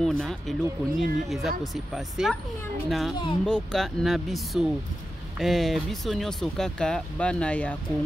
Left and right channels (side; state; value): both; normal; correlation 0.91